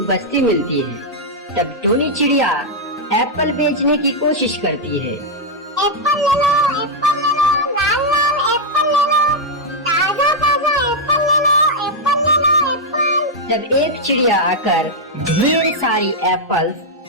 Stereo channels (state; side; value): normal; both; correlation -0.03